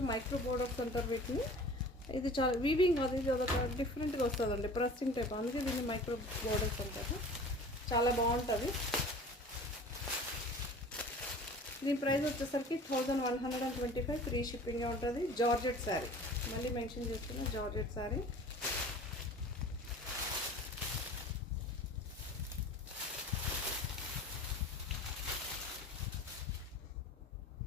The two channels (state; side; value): normal; both; correlation 0.42